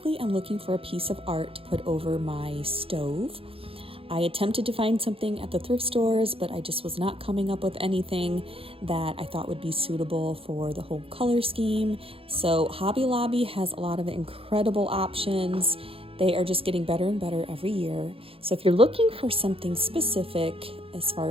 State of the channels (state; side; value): late; left; 0.27 ms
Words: I'm looking for a piece of art to put over my stove. I attempted to find something at the thrift stores, but I just was not coming up with anything that I thought would be suitable for the whole color scheme. So Hobby Lobby has a lot of incredible options. They are just getting better and better every year. So if you're looking for something specific as